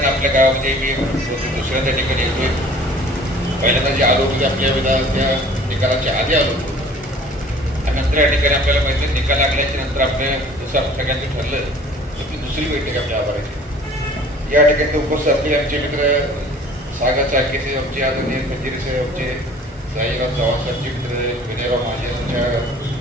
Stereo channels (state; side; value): normal; both; correlation 0.49